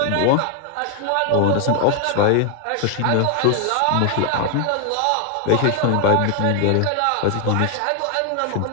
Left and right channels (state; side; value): different; both; correlation 0.00